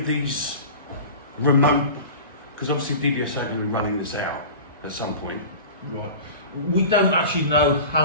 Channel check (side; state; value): both; inverted; correlation -0.36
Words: these remote, because obviously DVSA are going to be running this out at some point. Right. We don't actually know